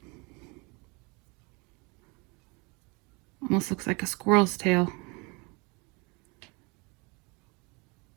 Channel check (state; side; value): quieter; left; 29.1 dB